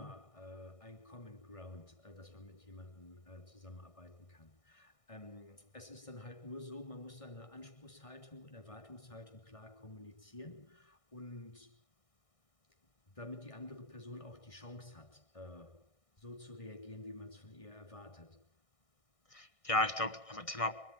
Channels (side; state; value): right; late; 1.6 ms